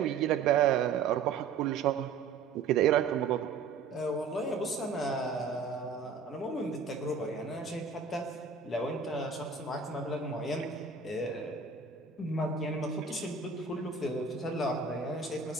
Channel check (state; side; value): quieter; left; 5.2 dB